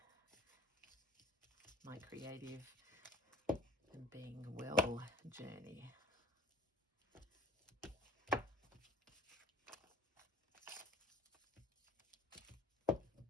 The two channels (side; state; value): both; normal; correlation 0.49